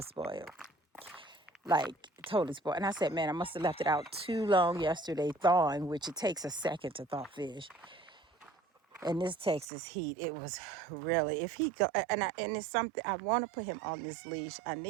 spoiled. Like, totally spoiled. And I said, man, I must have left it out too long yesterday thawing, which it takes a second to thaw fish. In this Texas heat, it was really, if he go, and it's something, I want to put him on this leash. I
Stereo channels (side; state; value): left; drops out; at 9.7 s